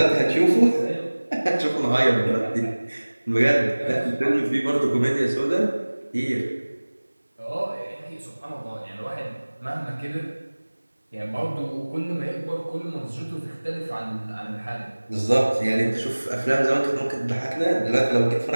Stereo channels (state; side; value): inverted; both; correlation -1.00